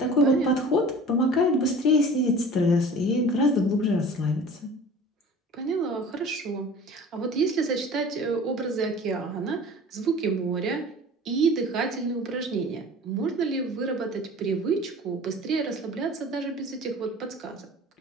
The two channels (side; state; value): both; normal; correlation 0.42